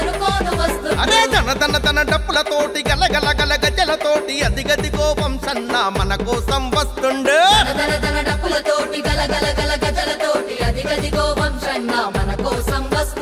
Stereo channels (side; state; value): both; identical; correlation 1.00